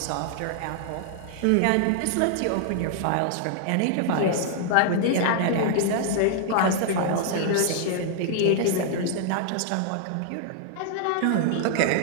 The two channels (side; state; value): both; different; correlation -0.01